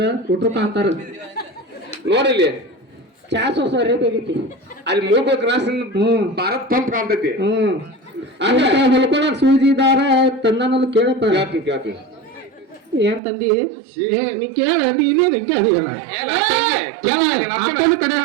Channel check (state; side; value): drops out; left; at 13.2 s